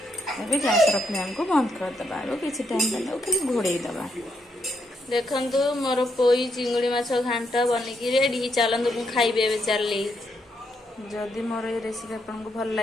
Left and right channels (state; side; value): normal; both; correlation 0.78